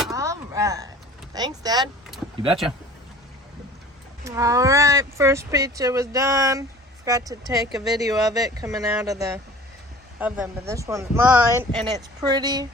All right. Thanks, Dad. You betcha. All right. First pizza was done. Forgot to take a video of it coming out of the oven, but this one's mine, and it's pretty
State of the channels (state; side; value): normal; both; correlation 0.45